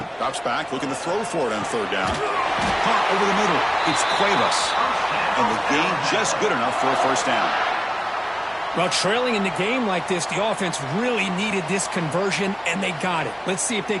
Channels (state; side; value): identical; both; correlation 1.00